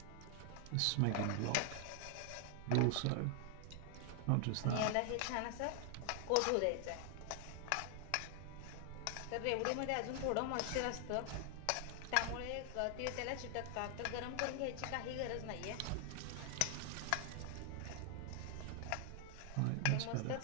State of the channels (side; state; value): both; different; correlation 0.00